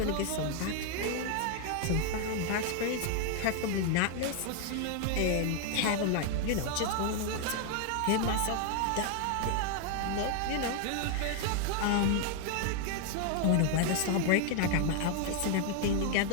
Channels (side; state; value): both; different; correlation 0.00